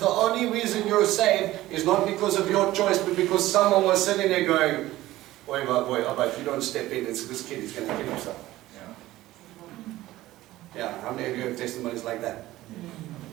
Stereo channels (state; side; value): quieter; left; 16.2 dB